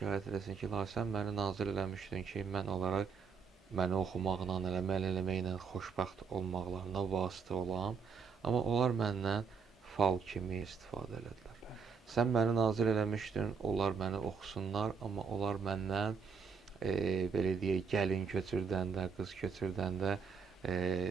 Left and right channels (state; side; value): quieter; left; 5.7 dB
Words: eləsin ki, ilahi, sən məni nazil eləmişdin ki, mən olaraq məni oxumaqla, əməl eləməklə xoşbəxt olmaqlarına vasitə olam, amma onlar məndən fal kimi istifadə elədilər. Sən məni nazil eləmişdin, onlar məni oxusunlar, amma onlar məndən belə deyək, gəlin köçürdəndə, qız köçürdəndə,